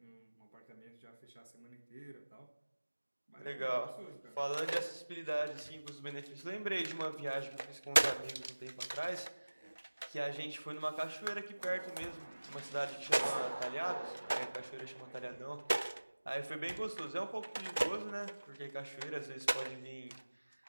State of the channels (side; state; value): both; inverted; correlation -1.00